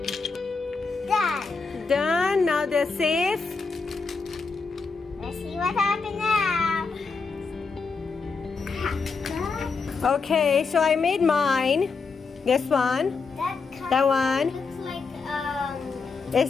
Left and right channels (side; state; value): right; quieter; 4.7 dB